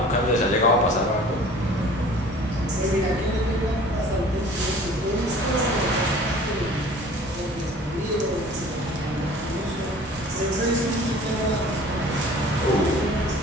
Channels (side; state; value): both; normal; correlation 0.47